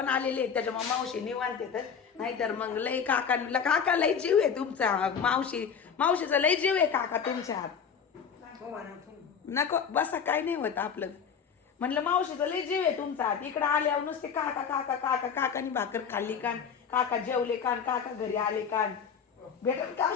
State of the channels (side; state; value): right; quieter; 6.9 dB